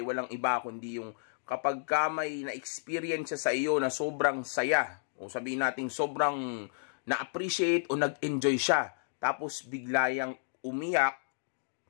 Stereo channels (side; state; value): right; silent; digital silence